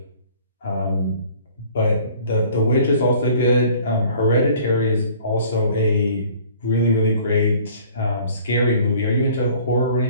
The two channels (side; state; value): both; inverted; correlation -0.53